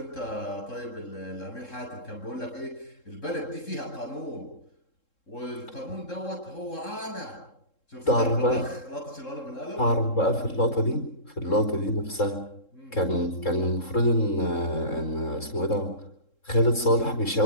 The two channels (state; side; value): late; right; 3.7 ms